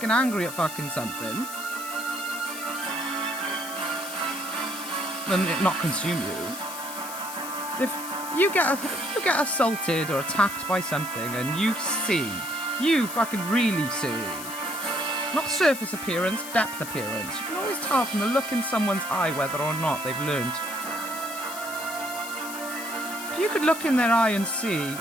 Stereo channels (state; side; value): noise; left; hiss, 10 dB below the sound